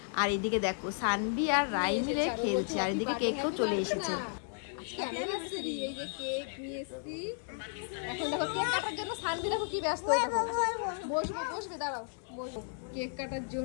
আর এদিকে দেখো সানভি আর রাই মিলে খেলছে, আর এদিকে কেকও চলে এসেছে। এই যে কেক নিয়ে এসেছি। এখন দেখো কেক কাটার জন্য সানভি দেখো কি ব্যস্ত হয়ে দেখো। বসবে দাঁড়াও, বসো। কেক কাটার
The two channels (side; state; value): right; silent; digital silence